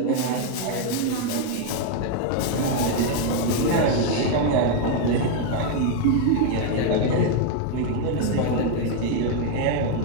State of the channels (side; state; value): both; different; correlation 0.01